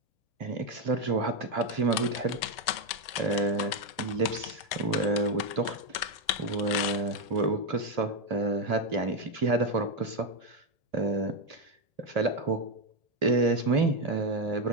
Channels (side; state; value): left; late; 1.8 ms